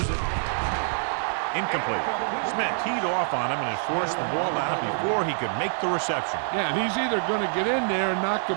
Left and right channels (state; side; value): silent; left; 61 dB below the other